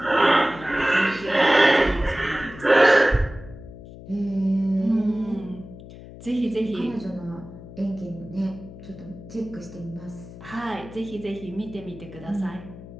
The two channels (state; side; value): noise; left; hum, 16 dB below the sound